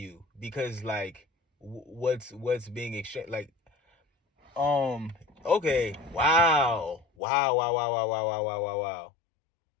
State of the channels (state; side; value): drops out; right; at 7.1 s